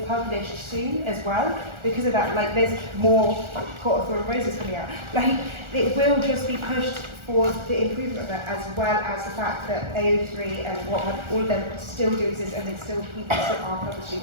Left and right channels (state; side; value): late; left; 1.4 ms